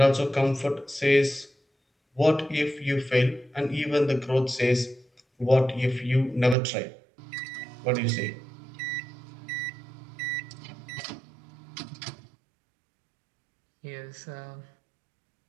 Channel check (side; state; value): left; drops out; at 6.6 s